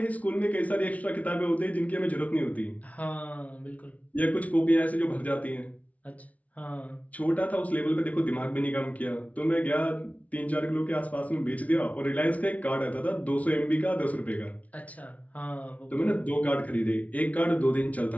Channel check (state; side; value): late; right; 0.068 ms